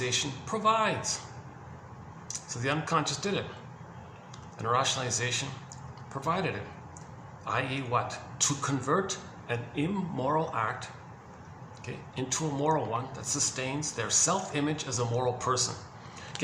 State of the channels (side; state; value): both; identical; correlation 1.00